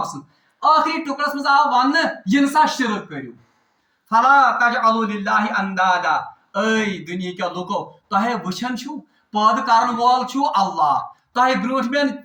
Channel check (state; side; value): identical; both; correlation 1.00